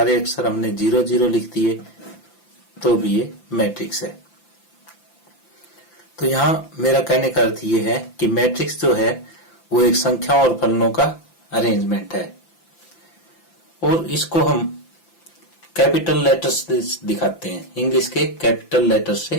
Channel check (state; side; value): late; right; 5.9 ms